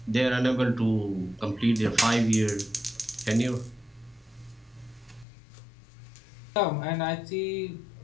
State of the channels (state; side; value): drops out; right; at 5.2 s